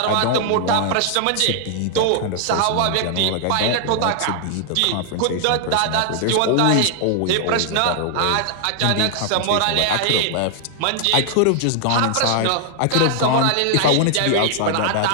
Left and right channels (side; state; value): both; different; correlation 0.00